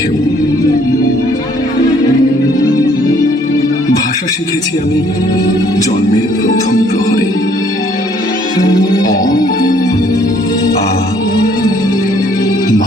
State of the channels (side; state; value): both; normal; correlation 0.62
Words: ভাষা শিখেছি আমি জন্মের প্রথম প্রহরে, অ আ